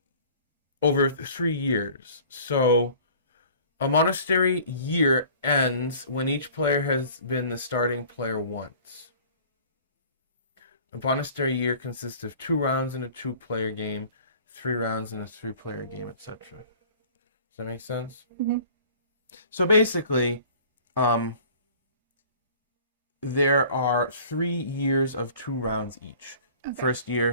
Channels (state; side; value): inverted; both; correlation -0.48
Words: over 3 years. So a monastery year ends when each player has been the starting player once. A monastery year consists of 2 rounds in a 2-player game, 3 rounds in a 3-player game, etc. Does that make sense? Mm-hmm. So basically, there are 3 years of 2 rounds each. Okay. First